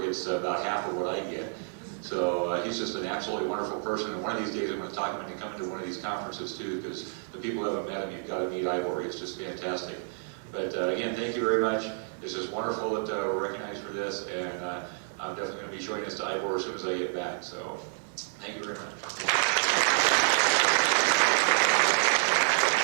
gets about half of what I get. So he's just an absolutely wonderful person, and one of these days I'm going to talk him into coming to one of these conferences too, because the people who haven't met him, you've got to meet Ivor. He's just fantastic. But again, thank you very much. It's just wonderful that we're recognized for this, and I'm definitely going to be showing this to Ivor as soon as I get back. So thank you very much.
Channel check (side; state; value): left; silent; digital silence